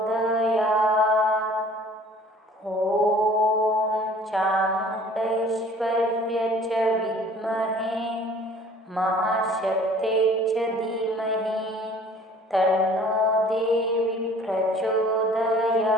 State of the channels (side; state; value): both; normal; correlation 0.51